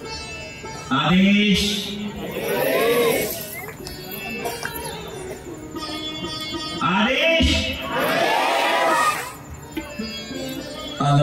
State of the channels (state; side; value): identical; both; correlation 1.00